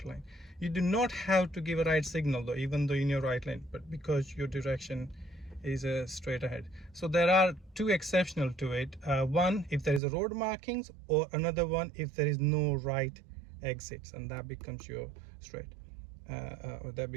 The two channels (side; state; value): left; drops out; at 10.0 s